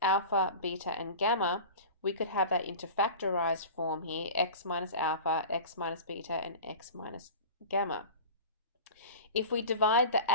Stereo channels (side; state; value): both; inverted; correlation -0.34